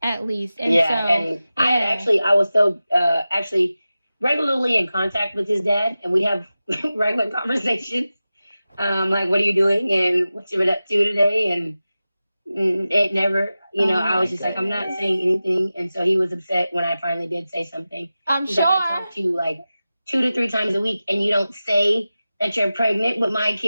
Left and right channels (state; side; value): inverted; both; correlation -0.95